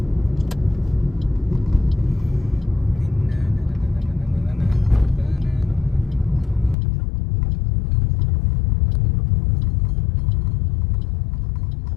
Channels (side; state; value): right; drops out; at 6.8 s